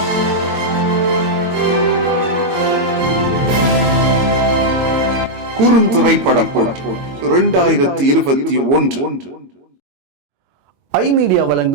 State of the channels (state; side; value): late; left; 22 ms